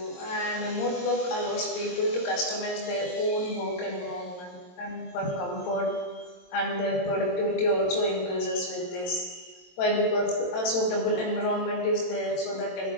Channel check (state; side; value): late; right; 22 ms